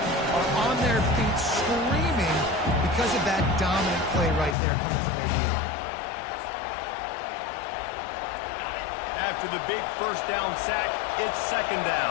are on their feet screaming because of that dominant play right there coming from their D-line. After the big first down sack, it's 2nd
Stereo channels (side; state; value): right; drops out; at 4.5 s